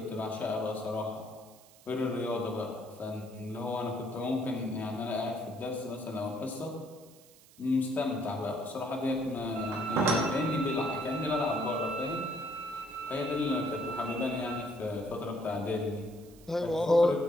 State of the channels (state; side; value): noise; right; hiss, 24 dB below the sound